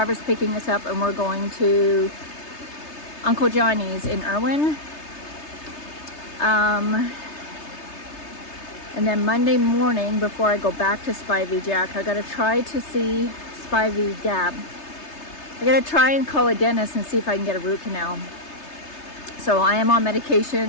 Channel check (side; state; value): right; late; 3.3 ms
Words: picking us up and we're going to Uncle Johnny's in Irwin. And then Monday morning, before I go back to Spivey Jack, I gotta try to see Spivey Gap. I gotta try and call a dentist and see if I can get a root canal. So I am on